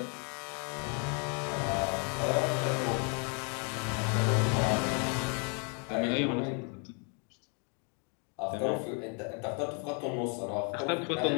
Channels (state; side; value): quieter; right; 38.1 dB